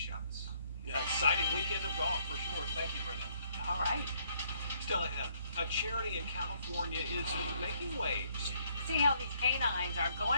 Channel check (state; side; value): inverted; both; correlation -0.67